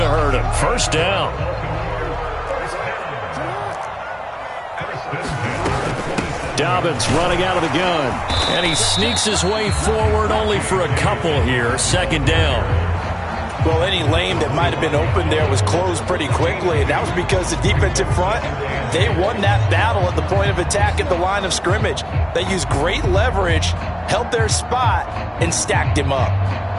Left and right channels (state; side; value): identical; both; correlation 1.00